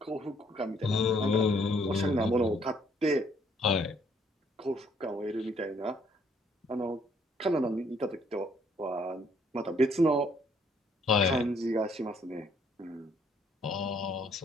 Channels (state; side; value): normal; both; correlation 0.66